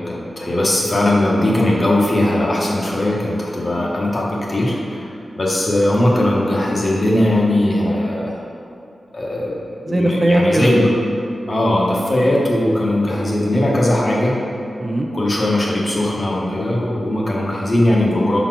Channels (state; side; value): normal; both; correlation 0.93